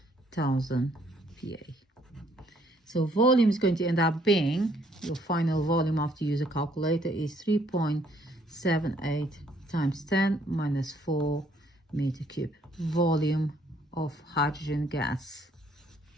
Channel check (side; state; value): both; normal; correlation 0.65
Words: PA. So volume is going to end up being, your final volume after you use a calculator is 3.78 times 10 minus 4 meter cube. Volume of hydrogen gas,